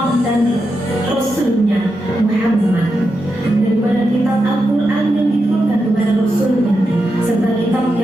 dan Rasulnya Muhammad, daripada kitab Al-Quran yang diturunkan kepada Rasulnya serta kitab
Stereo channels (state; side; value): normal; both; correlation 0.87